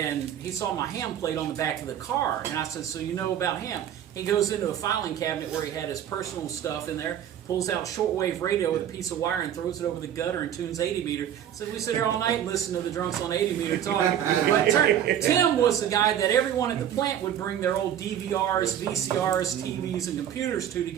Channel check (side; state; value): left; quieter; 10.1 dB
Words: he saw my ham plate on the back of the car, and I said, so you know about ham? He goes into a filing cabinet where he had his personal stuff in there, pulls out shortwave radio with a piece of wire and throws it over the gutter and tunes 80 meter. So we sit here all night and listen to the drunks on 80 meter talk. But Tim was the guy that everyone at the plant would bring their old DVRs, VCRs, TVs, and computers to